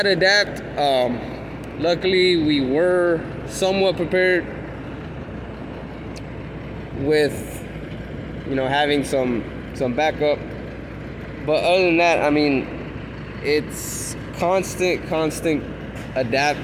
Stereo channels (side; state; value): both; identical; correlation 1.00